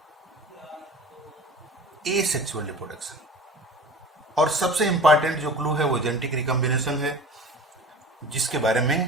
asexual reproduction. और सबसे इंपॉर्टेंट जो क्लू है वो जेनेटिक रिकॉम्बिनेशन है, जिसके बारे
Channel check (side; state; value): both; normal; correlation 0.39